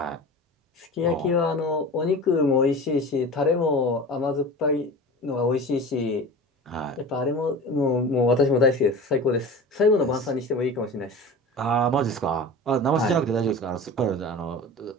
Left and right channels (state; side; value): normal; both; correlation 0.34